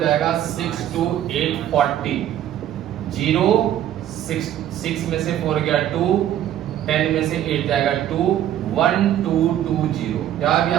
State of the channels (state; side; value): quieter; left; 11.5 dB